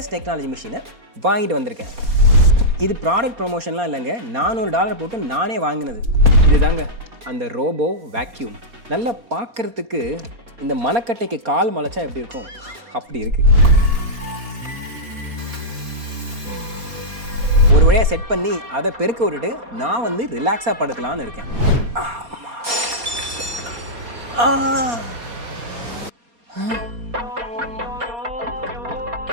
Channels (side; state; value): left; late; 4.2 ms